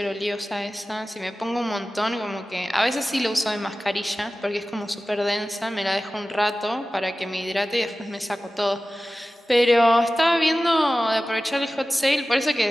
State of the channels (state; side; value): normal; both; correlation 0.96